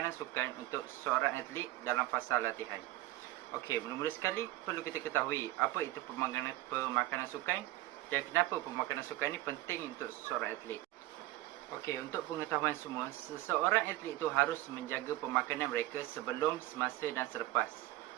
sukan untuk seorang atlet dalam fasa latihan. Okey, mula-mula sekali perlu kita ketahui apa itu pemakanan sukan dan kenapa pemakanan sukan ini penting untuk seorang atlet. Okey, untuk pengetahuan semua, seseorang atlet itu harus menjaga pemakanan mereka sebelum, semasa dan selepas.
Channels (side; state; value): left; quieter; 16.9 dB